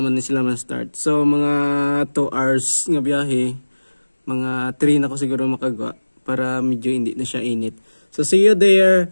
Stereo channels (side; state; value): both; inverted; correlation -1.00